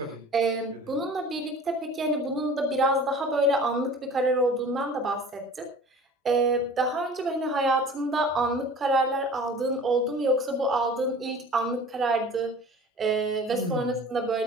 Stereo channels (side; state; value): both; normal; correlation 0.43